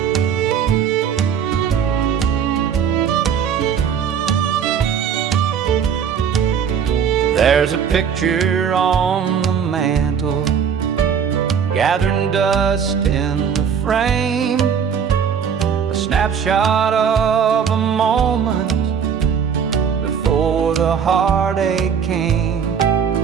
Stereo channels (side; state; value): left; quieter; 7.4 dB